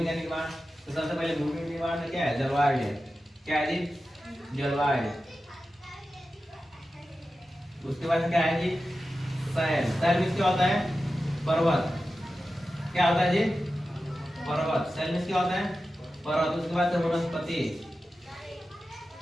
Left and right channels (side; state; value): both; normal; correlation 0.93